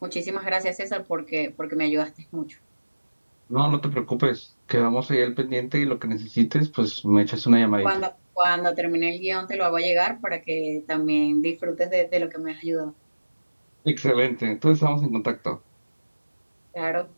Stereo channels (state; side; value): inverted; both; correlation -1.00